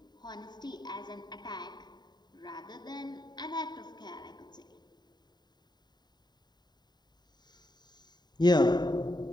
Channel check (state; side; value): late; right; 0.20 ms